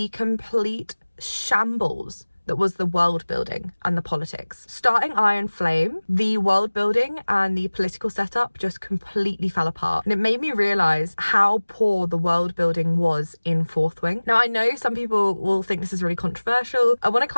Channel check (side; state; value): both; inverted; correlation -1.00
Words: complete shambles that was the world building and the politics. Starting Iron Flame, the world building and the political setup just completely fell apart. And it made me realise how poor the world building was in Fourth Wing. Now, I know some people will think this is really controversial. I want to